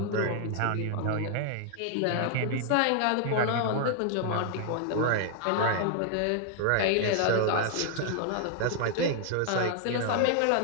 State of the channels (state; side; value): different; both; correlation 0.00